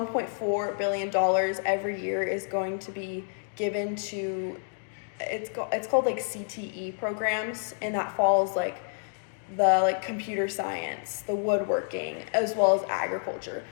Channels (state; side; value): silent; right; digital silence